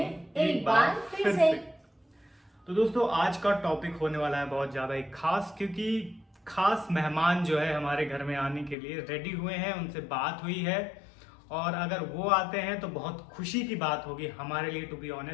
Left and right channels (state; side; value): drops out; right; at 8.8 s